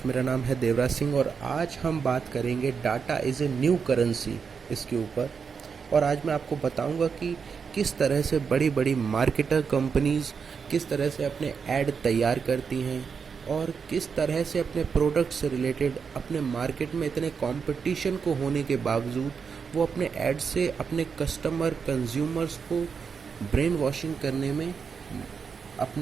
मेरा नाम है देवराज सिंह और आज हम बात करेंगे data is a new currency इसके ऊपर। और आज मैं आपको बताऊंगा कि किस तरह से बड़ी बड़ी मार्केटर कंपनीज़ किस तरह से अपने ऐड तैयार करती हैं और किस तरह से अपने प्रोडक्ट से रिलेटेड अपने मार्केट में इतने कंपटीशन को होने के बावजूद वो अपने ऐड से अपने कस्टमर कंज्यूमर्स को ब्रेन वॉशिंग करने में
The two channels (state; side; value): quieter; left; 6.0 dB